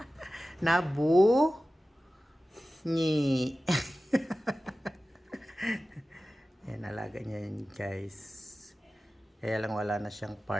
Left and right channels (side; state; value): both; normal; correlation 0.96